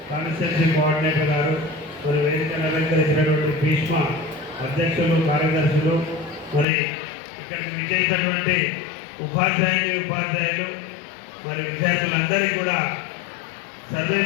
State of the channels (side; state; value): right; drops out; at 6.7 s